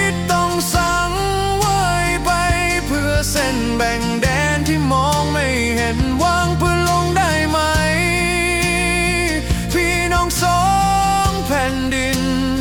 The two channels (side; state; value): both; identical; correlation 1.00